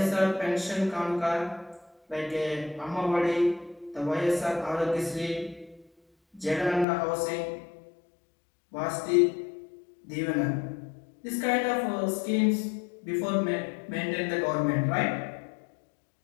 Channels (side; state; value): right; drops out; at 6.9 s